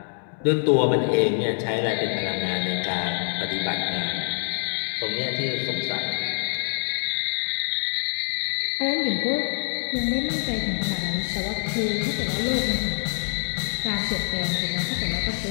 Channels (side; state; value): right; silent; 61 dB below the other